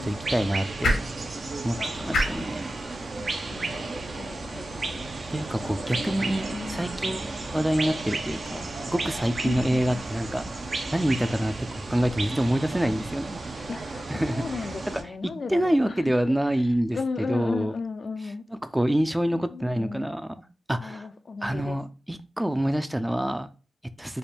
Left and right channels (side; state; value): both; normal; correlation 0.95